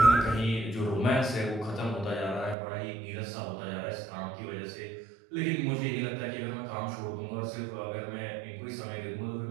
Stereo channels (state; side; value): drops out; left; at 2.6 s